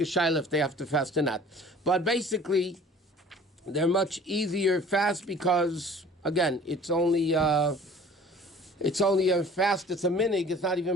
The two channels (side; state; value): both; normal; correlation 0.48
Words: shayla if they have to fast or not. But basically, they're much easier fast because, again, it's only a fast, it's a minig, it's not